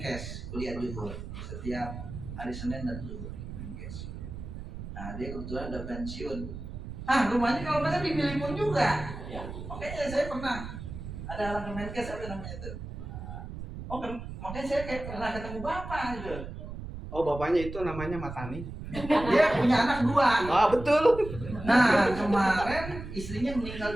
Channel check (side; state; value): right; noise; rumble, 9 dB below the sound